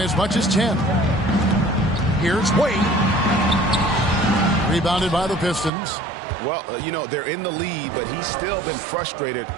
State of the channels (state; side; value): drops out; left; at 5.7 s